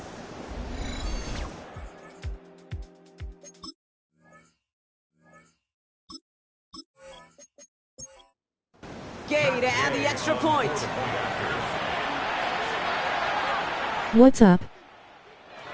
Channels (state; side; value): identical; both; correlation 1.00